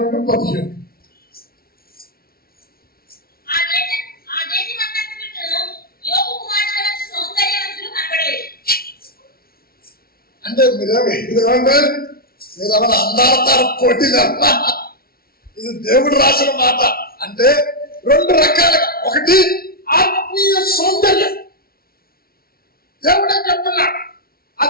అంటే మీరేమంటే అందాలతారు పోటీ. ఇది దేవుడు రాసిన మాట. అంటే రెండు రకాలుగా, ఒకటి ఆత్మీయ సౌందర్యం. దేవుడే చెప్తున్నాడు, ఆ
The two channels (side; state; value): right; late; 0.44 ms